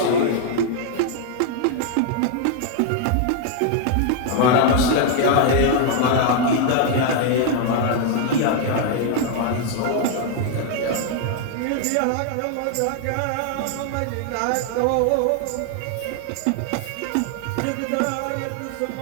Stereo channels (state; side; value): different; both; correlation 0.00